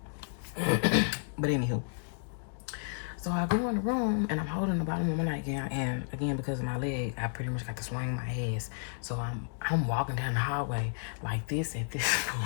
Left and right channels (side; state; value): right; silent; digital silence